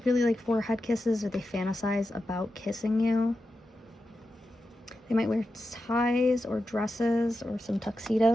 really like forehead kisses, or they fantasize about kissing you. They might wear ties or dresses or some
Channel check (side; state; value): both; normal; correlation 0.90